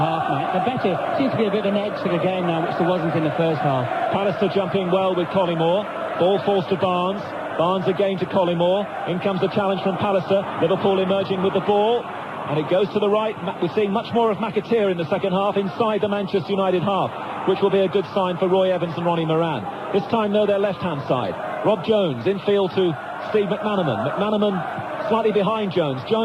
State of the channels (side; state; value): both; identical; correlation 1.00